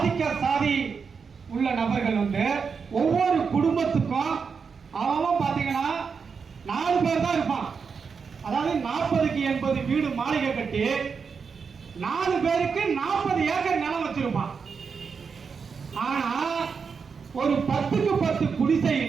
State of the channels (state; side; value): quieter; left; 5.7 dB